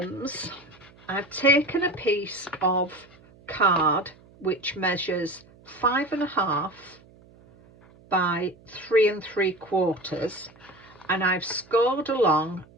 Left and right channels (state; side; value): noise; right; hum, 26 dB below the sound